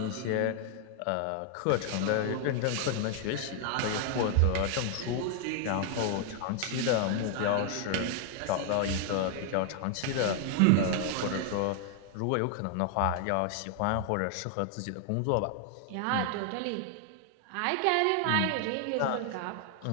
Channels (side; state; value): both; different; correlation 0.00